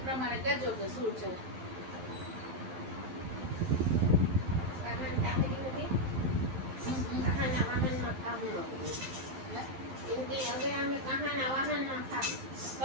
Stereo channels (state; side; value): late; left; 12 ms